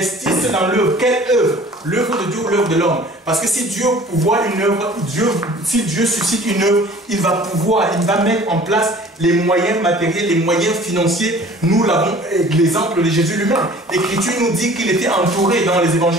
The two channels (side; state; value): both; normal; correlation 0.48